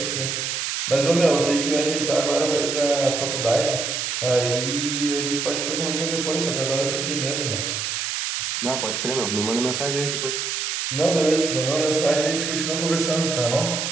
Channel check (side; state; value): right; noise; hiss, 2 dB below the sound